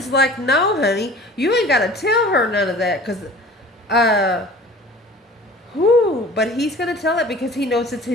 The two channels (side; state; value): both; normal; correlation 0.44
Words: like, no, honey, you ain't got to tell her none of that. But he's going to tell it because he knows it's